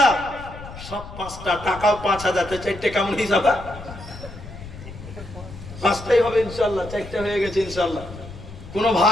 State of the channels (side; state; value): left; noise; rumble, 14 dB below the sound